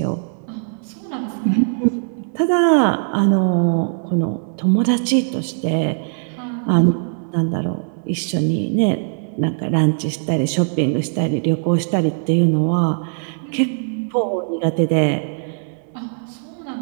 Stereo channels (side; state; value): left; silent; 66 dB below the other